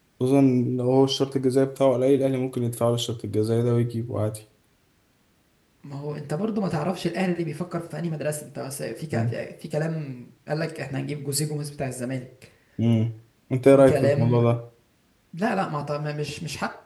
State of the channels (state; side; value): identical; both; correlation 1.00